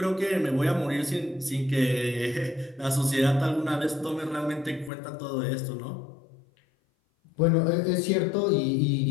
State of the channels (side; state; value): right; drops out; at 4.9 s